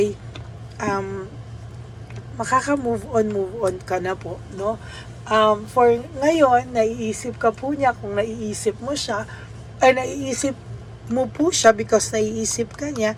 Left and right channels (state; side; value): identical; both; correlation 1.00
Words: makaka-move on ka na po, no? For ngayon, naiisip ka po niya, kung naiisip mo siya, ay naiisip mo po siya because naiisip ka